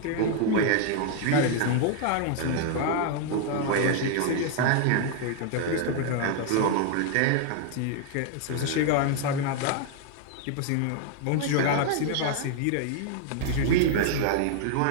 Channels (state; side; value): different; both; correlation 0.00